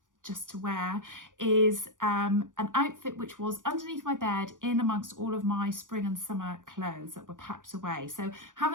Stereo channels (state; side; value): late; left; 0.88 ms